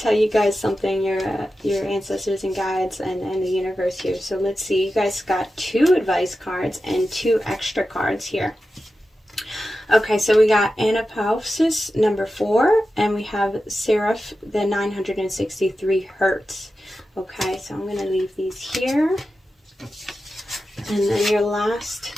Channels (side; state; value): both; normal; correlation 0.92